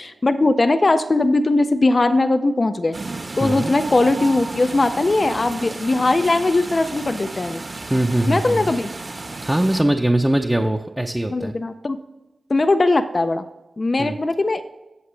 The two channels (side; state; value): both; normal; correlation 0.96